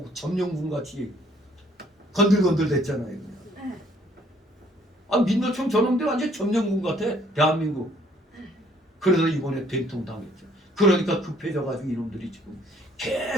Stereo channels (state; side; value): normal; both; correlation 0.62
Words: 점령군 같이 건들건들 됐잖아요. 그냥. 민노총 저놈들 완전 점령군 같아. 대한민국. 그래서 이번에 된통 당했죠. 그러니까 급해져가지고 이놈들이 지금